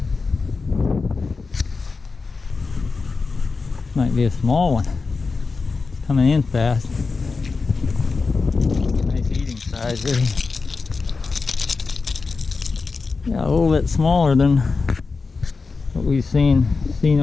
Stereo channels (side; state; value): right; quieter; 4.4 dB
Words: Might be a small one. It's coming in fast. Nice eating size there. Yeah, a little bit smaller than what we've seen